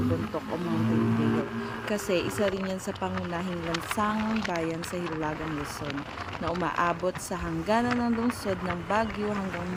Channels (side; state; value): both; identical; correlation 1.00